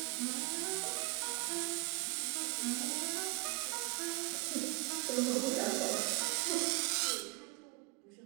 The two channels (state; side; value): quieter; left; 28.7 dB